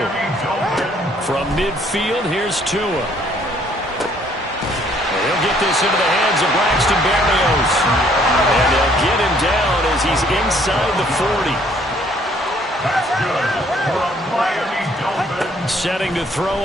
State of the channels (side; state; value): both; normal; correlation 0.63